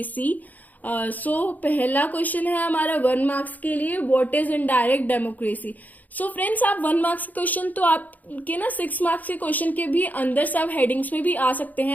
So पहला question है हमारा 1 marks के लिए, what is indirect democracy. So friends, आप 1 marks के question तो आपके ना 6 मार्क्स के क्वेश्चन के भी अंदर सब हेडिंग्स में भी आ सकते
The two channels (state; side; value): late; right; 0.081 ms